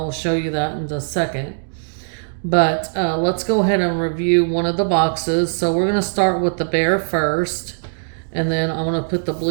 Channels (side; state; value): left; silent; digital silence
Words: show you that in a second. But let's go ahead and review one of the boxes. So we're going to start with the bear first, and then I'm going to put the